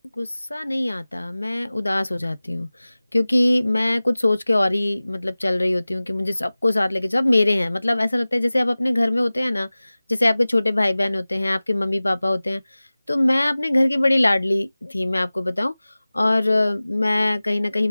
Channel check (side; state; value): both; inverted; correlation -0.98